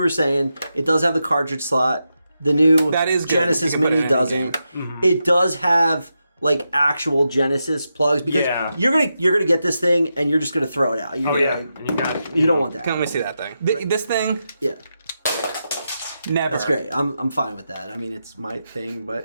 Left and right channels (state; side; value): inverted; both; correlation -0.87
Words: saying, it does have the cartridge slot. The new Genesis Mini doesn't. It does have like actual Genesis plugs because you're gonna get this thing and you're just gonna throw it out. And you don't want that. Can we see that thing? This thing? Yeah. Never. That's great. I'm fine with that. I mean, it's my thing,